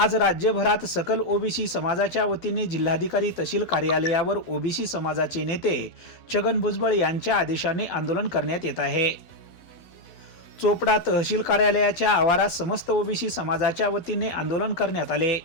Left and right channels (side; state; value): right; late; 12 ms